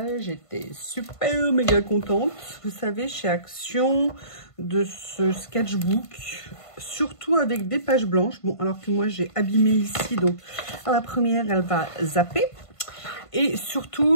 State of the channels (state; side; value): late; right; 1.5 ms